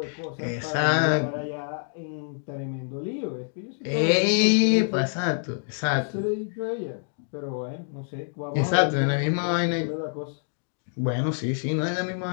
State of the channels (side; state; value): right; silent; digital silence